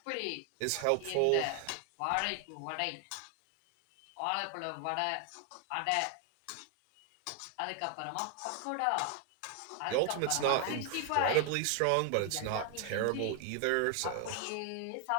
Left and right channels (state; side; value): different; both; correlation 0.00